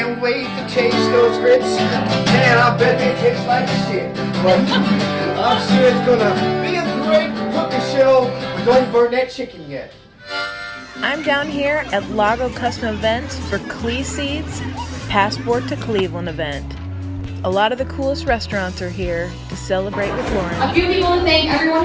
wait to taste those grits. Man, I bet they taste like shit. But I'm sure it's gonna be a great cooking show. But don't burn that chicken yet. I'm down here at Lago Custom Events for Clee Seeds Passport to Cleveland event. A lot of the coolest restaurants are here to celebrate with Lauren. A few people to thank,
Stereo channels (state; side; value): identical; both; correlation 1.00